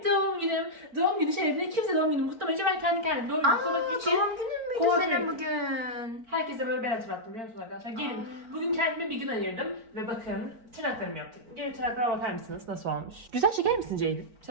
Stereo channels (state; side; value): late; left; 4.4 ms